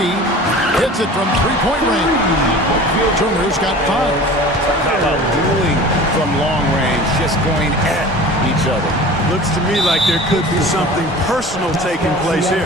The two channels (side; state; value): both; normal; correlation 0.40